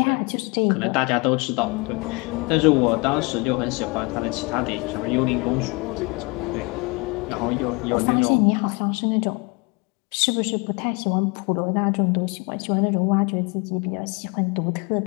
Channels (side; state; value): right; quieter; 28.6 dB